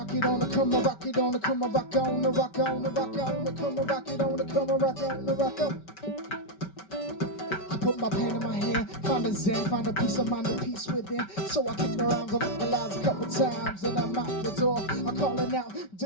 rock it on the, come on, rock it on the, come on, rock on the, rock on the, rock on the, come on, rock it on the, come on, rock on the, rock on. Put my pen in my hand, find a zen, find a peace of mind, a peace within. So I kick their arms, I vocalize a couple times, and I'm out the door. I'm calling out, do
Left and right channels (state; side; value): late; right; 5.2 ms